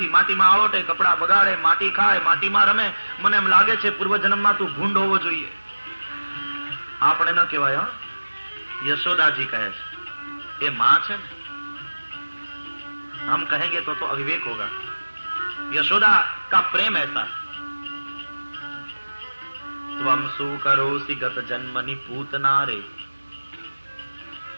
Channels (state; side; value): inverted; both; correlation -1.00